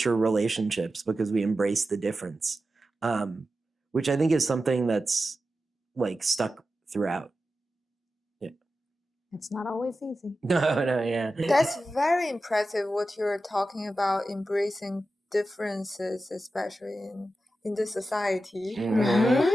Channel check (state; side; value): normal; both; correlation 0.92